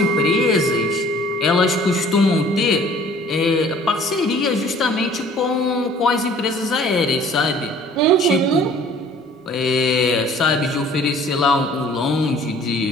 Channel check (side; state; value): both; normal; correlation 0.52